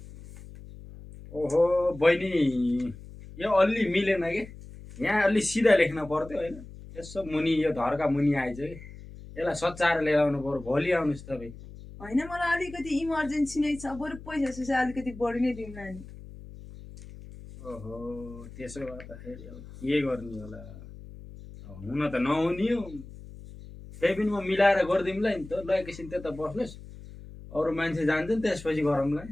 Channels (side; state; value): left; noise; hum, 16 dB below the sound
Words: ओहो बहिनी यो अलि मिलेन कि यहाँ अलि सिधा लेख्न पर्थ्यो होइन यसो मुनि यो धरका मुनि आइज कि यसलाई सच्चाएर लिएर आउनु पर्यो भोलि आउनुहोस् तपाईँ होइन मलाई अलिकति इमर्जेन्सी नै छ बरु पैसा सुसा अलिकति बढी नै दिउँ नानी ओहो त्यसो भए त फेरि अब के गर्ने होला हुन त नहुने हो त्यही पनि म मिलाएर गरिदिउँला नि त ल एकैछिन त्यता बस्नुहोस् अरू मान्छे जान्छ नि त्यसपछि गरौँला नि